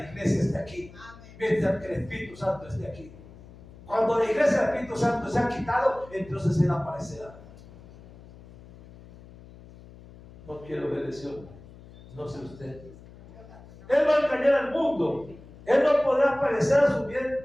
iglesia esté aquí, mientras que el Espíritu Santo esté aquí. Cuando la iglesia del Espíritu Santo se ha quitado, entonces él aparecerá. No quiero ver ese hombre, no sé usted. Él va a engañar al mundo. Él no podrá aparecer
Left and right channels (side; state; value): left; noise; hum, 20 dB below the sound